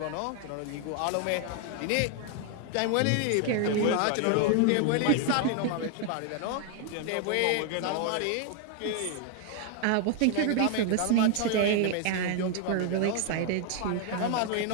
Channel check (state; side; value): different; both; correlation 0.00